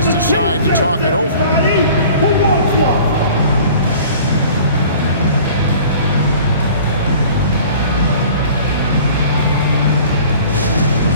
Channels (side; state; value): both; inverted; correlation -0.47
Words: decide to talk it over.